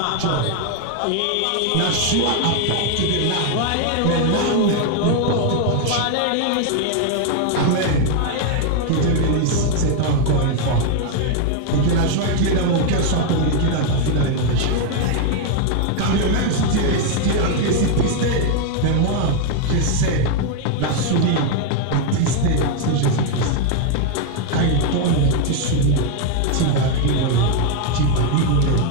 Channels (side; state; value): both; different; correlation 0.00